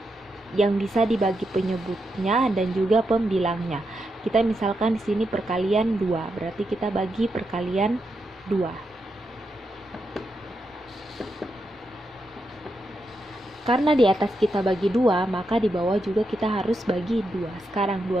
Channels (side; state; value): both; normal; correlation 0.84